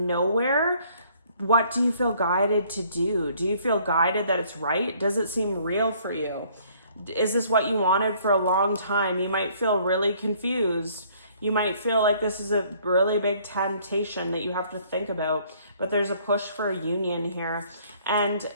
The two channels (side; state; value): both; inverted; correlation -0.60